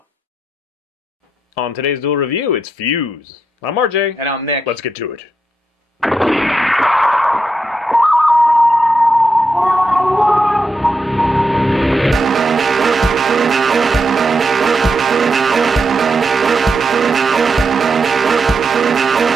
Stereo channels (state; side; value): normal; both; correlation 0.84